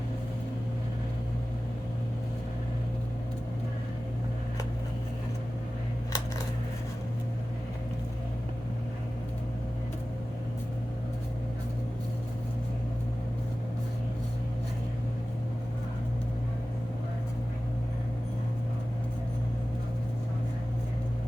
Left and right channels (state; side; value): normal; both; correlation 0.96